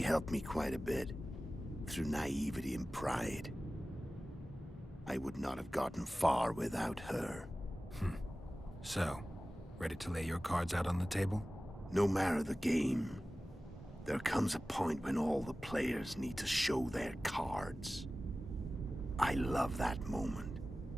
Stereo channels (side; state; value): both; normal; correlation 0.96